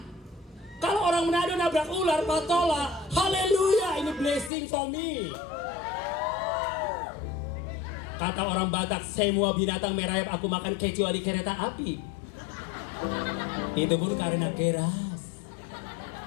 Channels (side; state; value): right; drops out; at 4.5 s